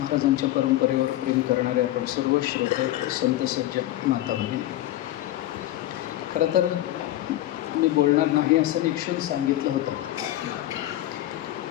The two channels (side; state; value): right; quieter; 14.6 dB